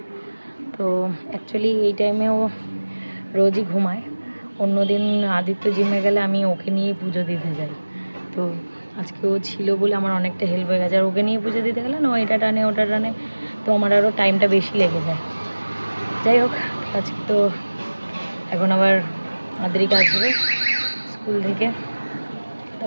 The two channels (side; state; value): both; inverted; correlation -1.00